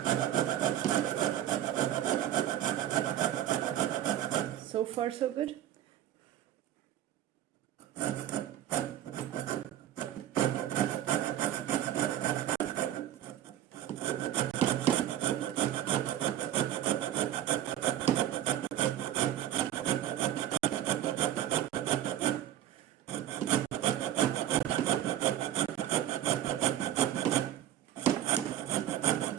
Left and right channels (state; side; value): quieter; left; 12.0 dB